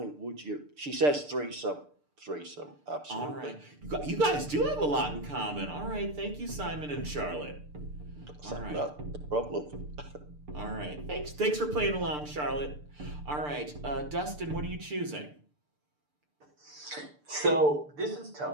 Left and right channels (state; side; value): late; left; 6.8 ms